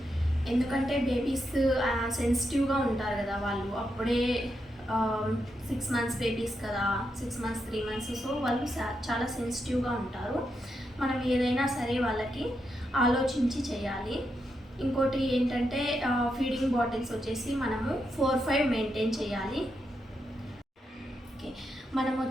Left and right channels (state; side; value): normal; both; correlation 0.84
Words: ఎందుకంటే బేబీస్ సెన్సిటివ్గా ఉంటారు కదా, వాళ్ళు అప్పుడే 6 మంత్స్ బేబీస్ కదా, 6 మంత్స్ 3 మంత్స్. సో వాళ్ళు చాలా సెన్సిటివ్గా ఉంటారు. మనం ఏదైనా సరే వాళ్ళకి ఆలోచించి చేయాలి. ఇంకోటి ఏంటంటే ఫీడింగ్ బాటిల్స్ వచ్చేసి మనము 4-5 మెయింటైన్ చేయాలి. ఓకే, మనం